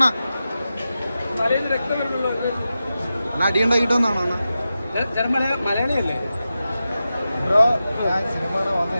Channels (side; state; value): both; inverted; correlation -0.92